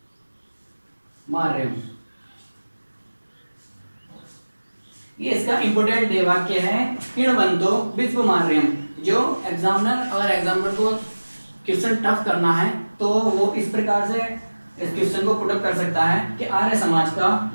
मार्यम। ये इसका इंपोर्टेंट ध्येयवाक्य है, किण्वन्तो विश्व मार्यम। जो एग्जामिनर को क्वेश्चन टफ करना है तो वो इस प्रकार से इस क्वेश्चन को पुट अप कर सकता है कि आर्य समाज का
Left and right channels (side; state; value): both; inverted; correlation -1.00